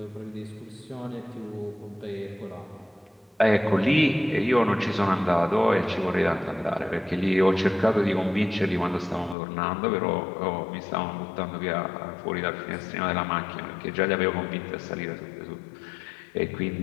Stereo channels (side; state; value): right; drops out; at 9.3 s